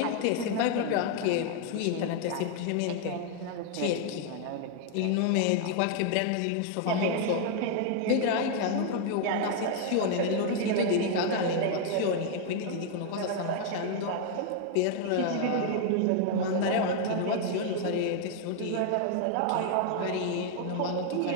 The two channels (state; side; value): different; both; correlation 0.00